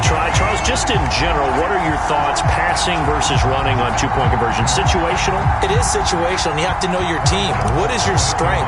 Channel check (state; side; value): identical; both; correlation 1.00